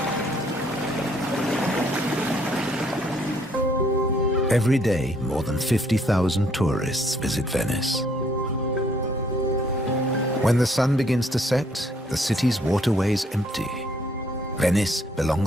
Every day, more than 50,000 tourists visit Venice. When the sun begins to set, the city's waterways empty. Venice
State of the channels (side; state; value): both; normal; correlation 0.66